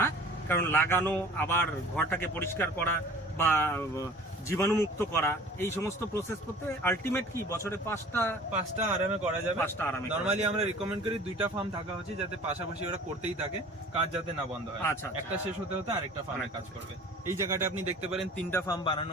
কারণ লাগানো, আবার ঘরটাকে পরিষ্কার করা বা জীবাণুমুক্ত করা, এই সমস্ত প্রসেস করতে আলটিমেট কি বছরে 5টা আরামে করা যাবে। 5টা আরামে নরমালি আমরা রিকমেন্ড করি 2টা ফার্ম থাকা উচিত, যাতে পাশাপাশি ওরা করতেই থাকে, কাজ যাতে না বন্ধ হয়। আচ্ছা, একটা শেষ হতে হতে আরেকটা ফার্মে কাজ করবে। এই জায়গাটা আপনি দেখতে পারেন 3টা ফার্ম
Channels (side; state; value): both; normal; correlation 0.46